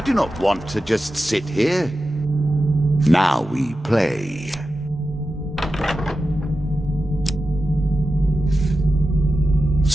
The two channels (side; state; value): both; normal; correlation 0.92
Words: do not want to just sit here. Now we play.